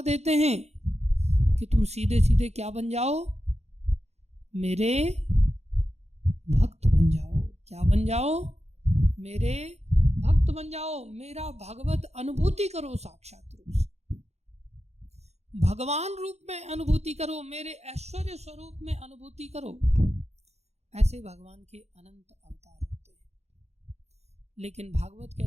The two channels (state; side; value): late; left; 0.31 ms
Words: देते हैं कि तुम सीधे सीधे क्या बन जाओ? मेरे भक्त बन जाओ। क्या बन जाओ? मेरे भक्त बन जाओ, मेरा भगवत अनुभूति करो, साक्षात रूप से भगवान रूप में अनुभूति करो, मेरे ऐश्वर्य स्वरूप में अनुभूति करो। ऐसे भगवान के अनंत अवतार होते हैं। लेकिन भागवत